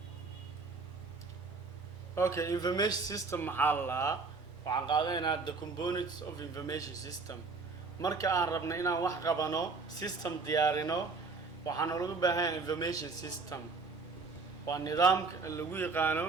okay information system maxaa la waxaan qaadanaynaa the components of information system marka aan rabno inaan wax qabano system diyaarino waxaan ugu baahan information system waa nidaamka lagu yaqaano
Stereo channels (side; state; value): left; quieter; 4.3 dB